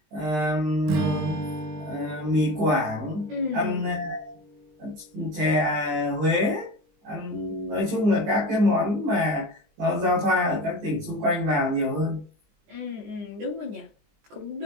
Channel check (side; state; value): left; late; 20 ms